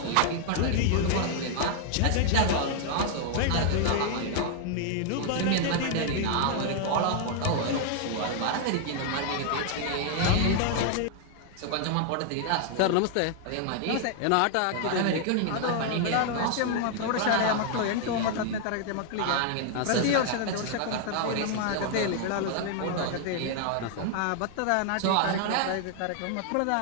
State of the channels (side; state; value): both; different; correlation 0.00